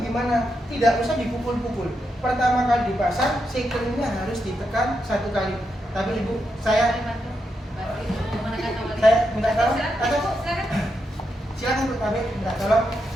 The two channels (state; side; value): normal; both; correlation 0.84